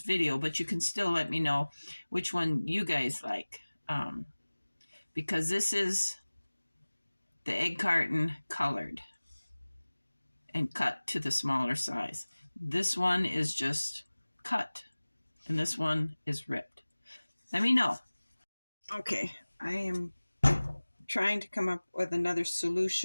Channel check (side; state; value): both; inverted; correlation -1.00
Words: video, but you can still let me know which one you guys like. Because this is the egg carton colored and cut to the smaller size. This one is just cut, and this one is ripped. Let me know. Okay, I am trying to come up with another